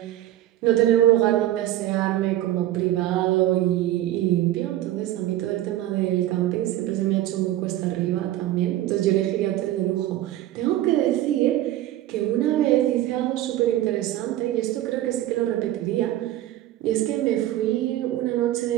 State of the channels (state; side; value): quieter; left; 14.0 dB